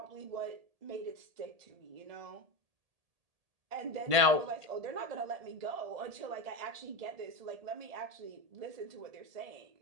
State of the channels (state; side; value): late; left; 1.8 ms